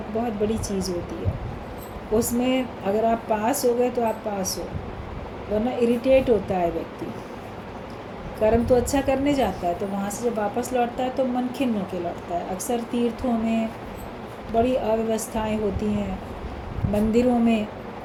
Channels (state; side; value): identical; both; correlation 1.00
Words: बहुत बड़ी चीज़ होती है, उसमें अगर आप पास हो गए तो आप पास हो, वरना इरिटेट होता है व्यक्ति। कर्म तो अच्छा करने जाता है, तो वहाँ से जब वापस लौटता है तो मन खिन्न होकर लौटता है। अक्सर तीर्थों में बड़ी अव्यवस्थाएं होती हैं, मंदिरों में